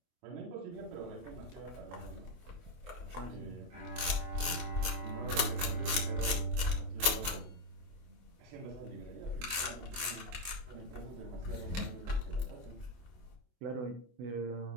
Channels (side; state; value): left; late; 23 ms